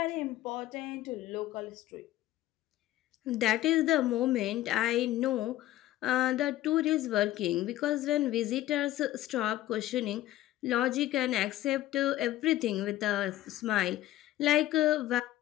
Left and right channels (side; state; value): right; quieter; 14.8 dB